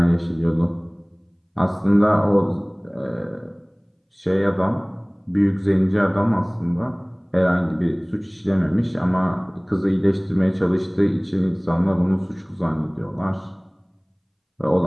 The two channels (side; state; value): both; identical; correlation 1.00